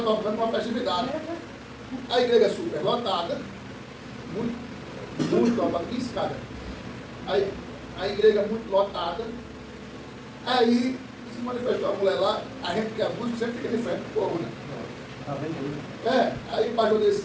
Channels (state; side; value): identical; both; correlation 1.00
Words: tocando uma festividade. A igreja super lotada, muito lotada, 15 cada. Aí, a igreja muito lotada. Aí se manifestou a mulher lá, a gente que é músico sempre fica de frente do povo, né? Aí o pastor disse,